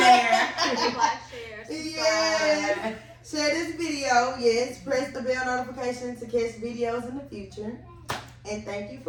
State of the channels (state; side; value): identical; both; correlation 1.00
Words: share. Please like, share, subscribe. Yes. Share this video. Yes. Press the bell notification to catch videos in the future. And thank you